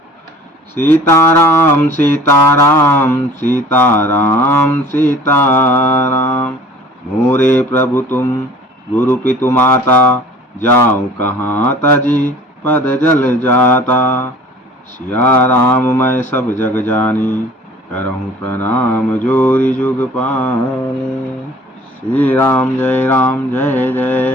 सीताराम सीताराम सीताराम सीताराम, मोरे प्रभु तुम गुरु पितु माता, जाऊं कहाँ तजी पद जल जाता। सिया राम मैं सब जग जानी, करहूँ प्रणाम जोरी जुग पानी। श्री राम जय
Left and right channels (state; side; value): normal; both; correlation 0.48